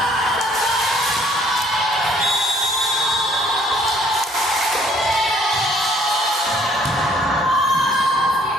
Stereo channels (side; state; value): both; normal; correlation 0.60